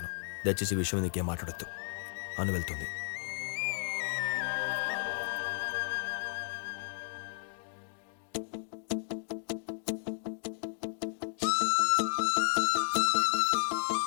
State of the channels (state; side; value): silent; right; digital silence